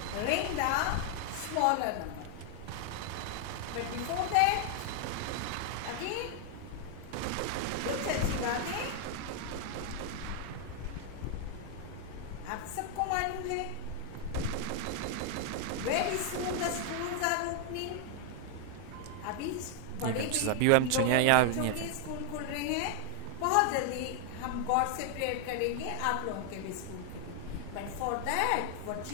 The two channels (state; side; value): different; both; correlation 0.00